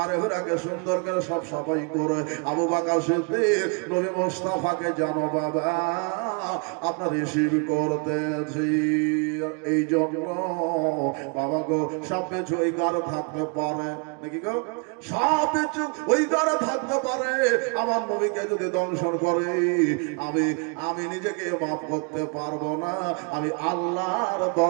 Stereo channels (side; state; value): left; quieter; 36.4 dB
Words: হীরাকে সুন্দর করে সব সাফাই করে। আবু বকর সিদ্দিক নবী মুস্তাফাকে জানো বাবা আপনার রিসিভ করতেছি, এই জন্য বাবা গো সব কিছু ওই গারে থাকতে পারে নাকি গো, সব কিছু ওই গারে থাকতে পারে। আমার নবীকে যদি দংশন করে আমি নিজেকে মাফ করতে পারবো না, আমি আল্লাহর